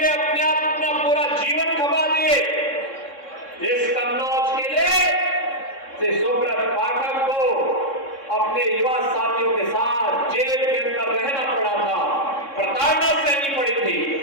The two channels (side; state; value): right; late; 3.6 ms